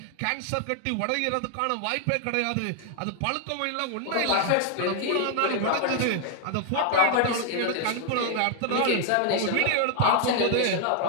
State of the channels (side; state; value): both; different; correlation 0.00